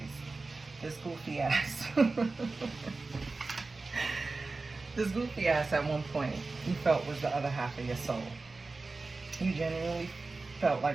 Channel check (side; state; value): left; quieter; 3.7 dB